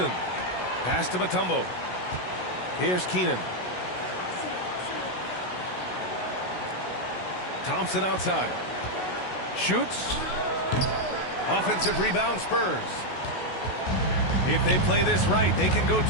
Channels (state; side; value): late; right; 16 ms